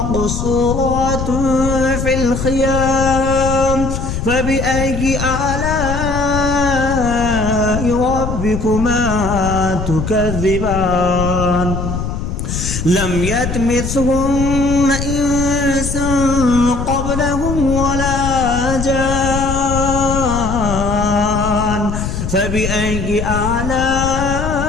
في الخيام فبأي آلاء ربكما تكذبان لم يطمثهن إنس قبلهم ولا جان فبأي آلاء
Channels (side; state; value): left; noise; rumble, 4 dB below the sound